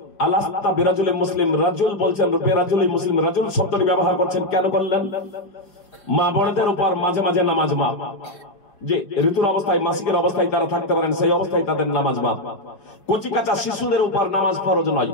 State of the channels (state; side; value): late; right; 5.2 ms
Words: আলাস্তা বিরাজুলিন মুসলিম, রাজুল বলছেন, বিরাজুলিন মুসলিম, রাজুল শব্দটি ব্যবহার করছেন কেন করলেন? মা বোনদের উপর মাঝে মাঝে নামাজ মাপ, যে ঋতুর অবস্থায়, মাসিকের অবস্থায় তারা থাকতে পারেন, সেই অবস্থায় তাদের নামাজ মাপ। কচি কাঁচা শিশুদের উপর নামাজ ফরজ নয়,